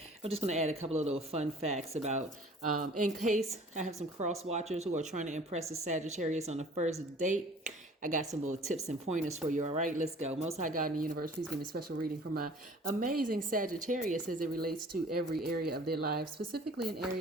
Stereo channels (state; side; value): normal; both; correlation 0.49